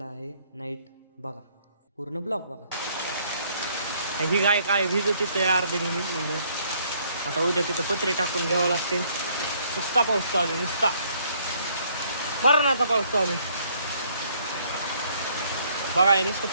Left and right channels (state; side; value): inverted; both; correlation -0.65